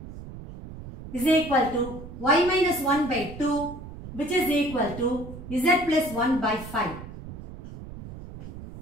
is equal to y minus 1 by 2, which is equal to z plus 1 by 5.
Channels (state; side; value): noise; right; rumble, 13 dB below the sound